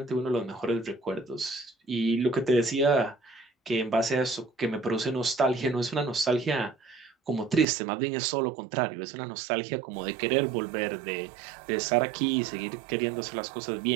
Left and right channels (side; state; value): left; drops out; at 7.7 s